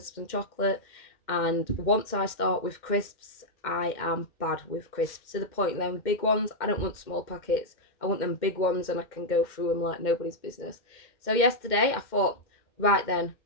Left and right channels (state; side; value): late; right; 2.1 ms